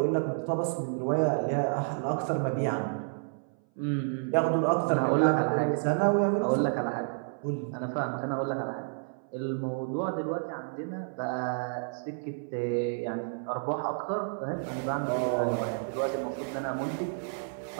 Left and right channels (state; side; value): silent; left; 58 dB below the other